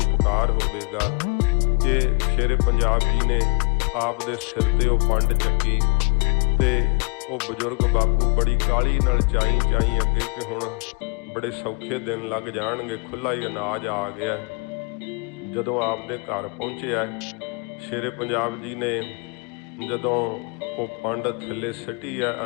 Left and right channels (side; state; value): right; quieter; 32.3 dB